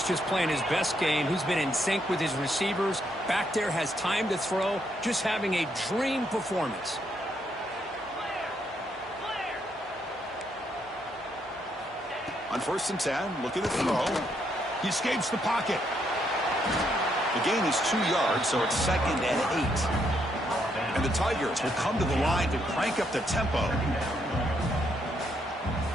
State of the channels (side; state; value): both; normal; correlation 0.75